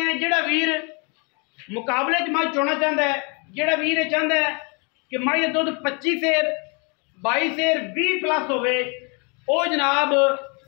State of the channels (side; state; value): right; quieter; 33.7 dB